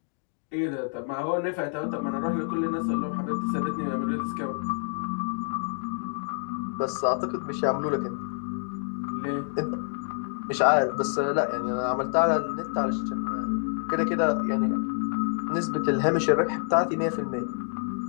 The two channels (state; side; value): silent; right; 60 dB below the other